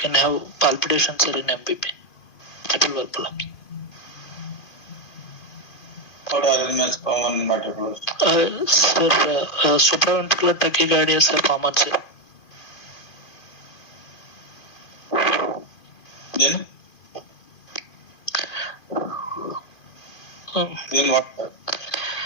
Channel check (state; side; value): late; right; 2.5 ms